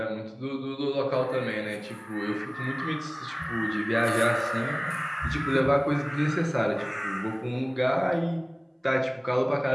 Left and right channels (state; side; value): identical; both; correlation 1.00